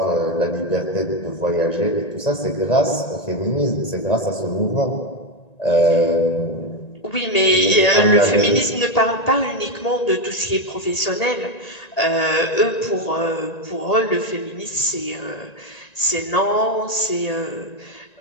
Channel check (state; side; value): late; right; 1.9 ms